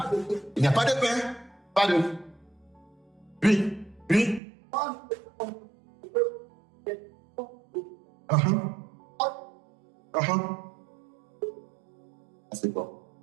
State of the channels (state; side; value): drops out; left; at 4.4 s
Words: il n'y a pas de pain, pas de. Oui.